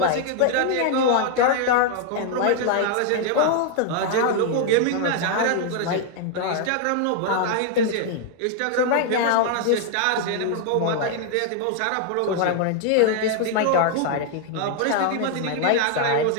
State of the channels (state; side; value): different; both; correlation 0.00